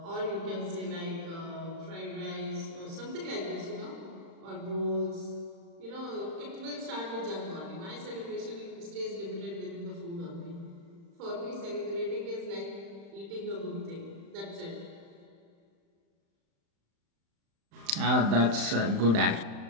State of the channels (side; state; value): left; late; 35 ms